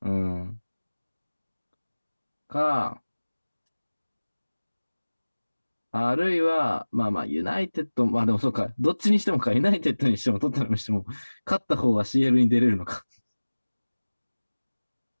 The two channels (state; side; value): inverted; both; correlation -1.00